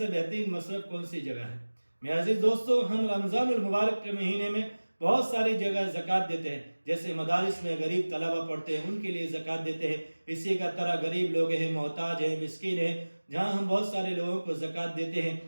بہترین مصرف کون سی جگہ ہے؟ میرے عزیز دوستو، ہم رمضان المبارک کے مہینے میں بہت ساری جگہ زکوٰۃ دیتے ہیں، جیسے مدارس میں غریب طلبہ پڑھتے ہیں ان کے لیے زکوٰۃ دیتے ہیں، اسی کا طرح غریب لوگ ہیں، محتاج ہیں، مسکین ہیں، جہاں ہم بہت سارے لوگوں کو زکوٰۃ دیتے ہیں۔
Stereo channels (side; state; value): both; inverted; correlation -1.00